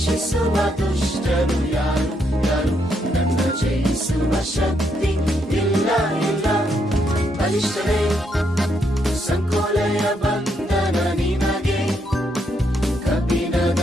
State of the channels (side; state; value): both; normal; correlation 0.76